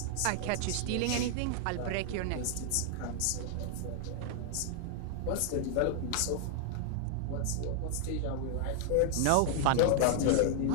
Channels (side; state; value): both; different; correlation -0.01